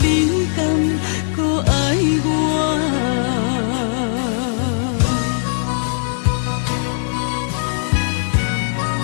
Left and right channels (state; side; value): silent; right; 67 dB below the other